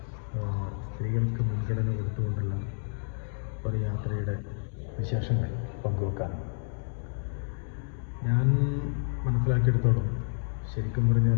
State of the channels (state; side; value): silent; right; digital silence